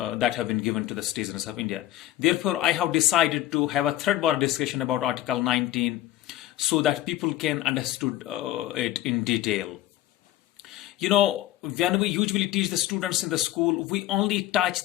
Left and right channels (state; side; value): quieter; right; 14.4 dB